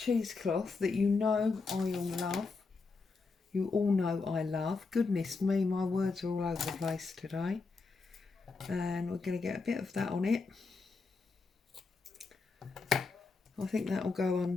that you know I all love. You all know I love. Goodness me, my words are all over the place today. And we're going to get a bit of that on it. I think that will go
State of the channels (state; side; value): quieter; right; 4.3 dB